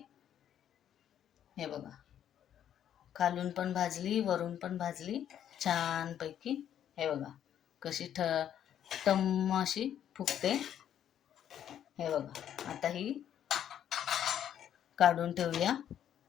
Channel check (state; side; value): quieter; right; 10.1 dB